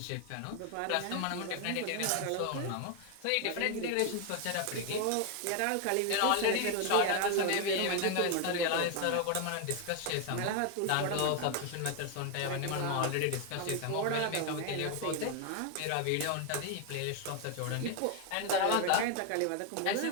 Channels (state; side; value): different; both; correlation 0.01